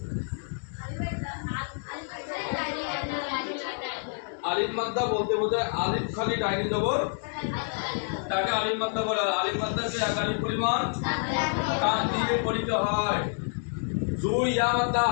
আলিফ মাদ্দা বলতে বোঝায় আলিফ খালি ডাইনি জবর তাকে আলিফ মাদ্দা বলে। আলিফ মাদ্দাকে একালি পরিমাণ টান দিয়ে পড়িতে হয়। দুই ইয়া মাদ্দা।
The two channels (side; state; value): right; silent; 59 dB below the other